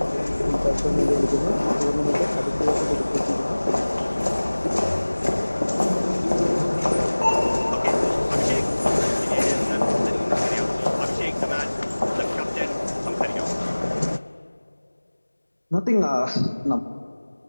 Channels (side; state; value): both; inverted; correlation -1.00